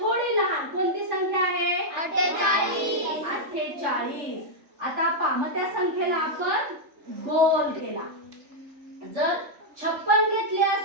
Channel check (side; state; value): left; late; 3.4 ms